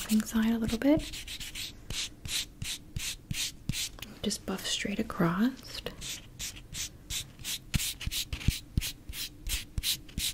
side a little bit. Just buff straight across.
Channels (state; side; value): identical; both; correlation 1.00